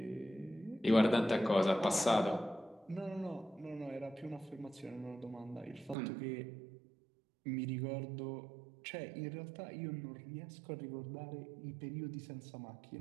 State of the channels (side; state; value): left; drops out; at 6.0 s